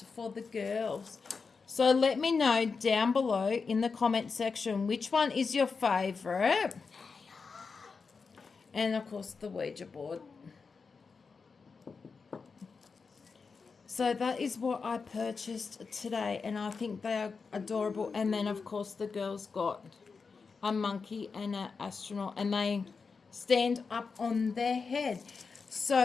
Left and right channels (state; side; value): quieter; right; 4.9 dB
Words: for the girls. So let me know down below in the comment section which one is your favourite. And, of course, the Ouija board. So that is what I purchased today, and I think they are adorable. And then, of course, the girls got a monkey and an astronaut, and they stand up on their head.